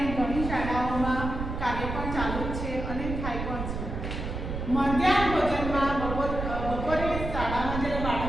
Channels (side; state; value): right; noise; rumble, 5 dB below the sound